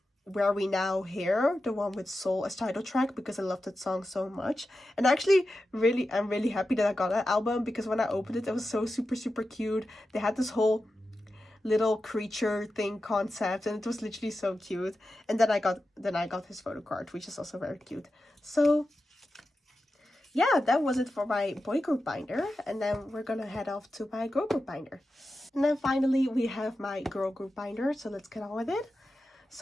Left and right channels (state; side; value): normal; both; correlation 0.91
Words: Where We Now Here, the one with Soul as title track, because I love that song so much. And actually, I'm really happy that I got that album, because when I opened it, it was so super cute. They had this whole little creature thing concept, and it was literally so cute. And then I got his photo card, which is also very cute. So yeah, that was it for my boy group binder, and then we're gonna head off to my girl group binder. And then finally we have my girl group binder, so let's get on with it.